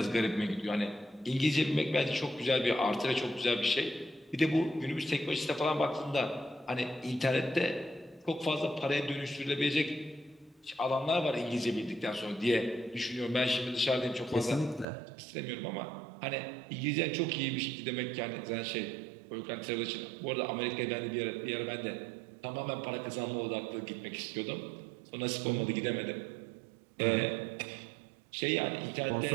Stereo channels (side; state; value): left; drops out; at 14.9 s